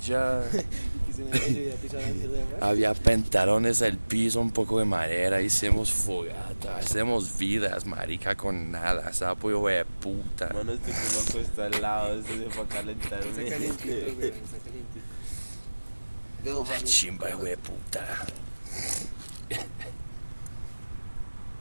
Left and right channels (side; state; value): both; inverted; correlation -1.00